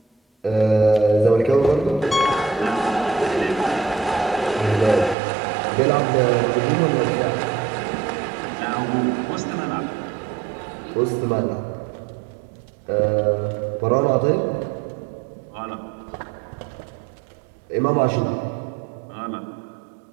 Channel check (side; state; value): left; drops out; at 5.2 s